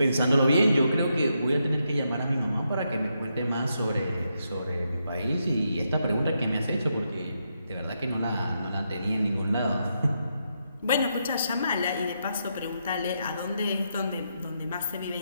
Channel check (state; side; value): inverted; both; correlation -0.81